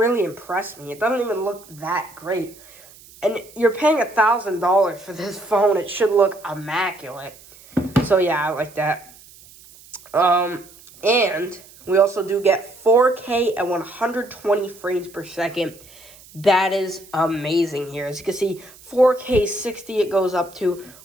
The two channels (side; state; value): right; noise; hiss, 23 dB below the sound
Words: impress me. It doesn't even look that great. And you're paying $1,000 for this phone. It should look immaculate. So yeah, I like that. And we also do get 4K at 120 frames per second. That is amazing here. As you can see, 4K 60 it goes up to